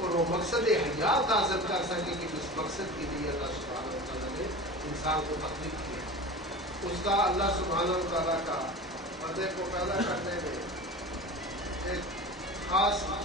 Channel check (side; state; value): both; normal; correlation 0.33